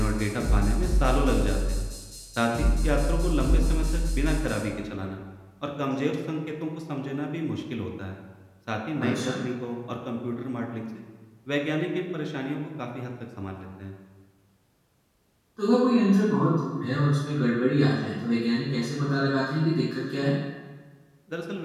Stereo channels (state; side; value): identical; both; correlation 1.00